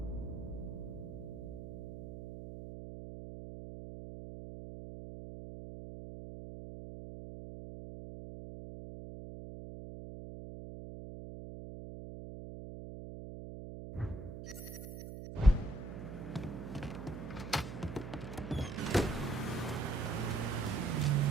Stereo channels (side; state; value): right; noise; hum, 9 dB below the sound